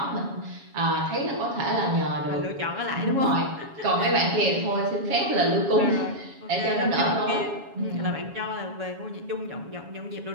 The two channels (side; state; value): left; late; 7.2 ms